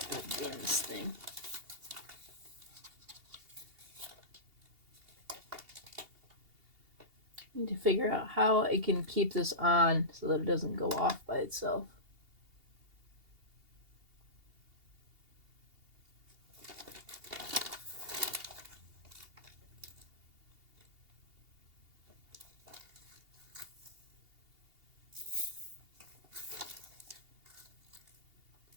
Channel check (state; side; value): late; left; 2.8 ms